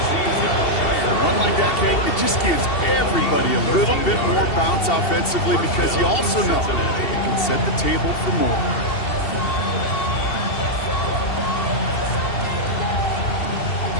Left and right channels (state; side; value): late; right; 2.7 ms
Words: A run like that, Kate, it just gives everybody a little bit more bounce offensively because you also know you can set the table for more.